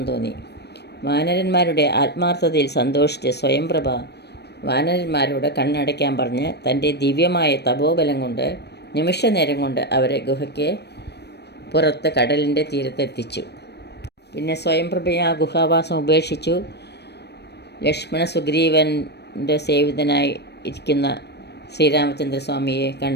തോന്നി. വാനരന്മാരുടെ ആത്മാർത്ഥതയിൽ സന്തോഷിച്ച് സ്വയംപ്രഭ വാനരന്മാരോട് കണ്ണടയ്ക്കാൻ പറഞ്ഞ് തൻ്റെ ദിവ്യമായ തപോബലം കൊണ്ട് നിമിഷനേരം കൊണ്ട് അവരെ ഗുഹയ്ക്ക് പുറത്ത് കടലിൻ്റെ തീരത്തെത്തിച്ചു. പിന്നെ സ്വയംപ്രഭയെ ആ ഗുഹാവാസം ഉപേക്ഷിച്ചു. ലക്ഷ്മണ സുഗ്രീവൻ്റെ സേവിതനായി ഇരിക്കുന്ന ശ്രീരാമചന്ദ്രസ്വാമിയെ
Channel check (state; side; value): late; right; 0.49 ms